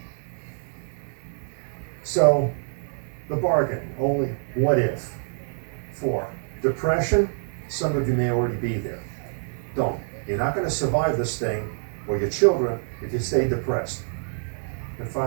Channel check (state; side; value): silent; left; 61 dB below the other